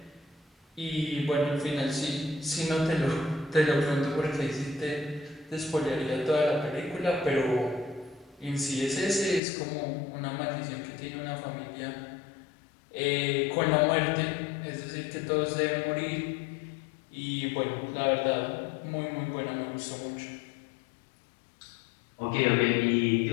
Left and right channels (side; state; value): right; drops out; at 9.4 s